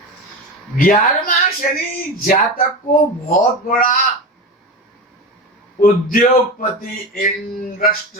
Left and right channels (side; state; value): both; normal; correlation 0.24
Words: 11वां शनि जातक को बहुत बड़ा उद्योगपति,